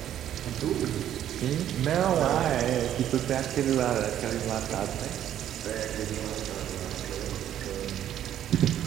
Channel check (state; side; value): quieter; left; 11.0 dB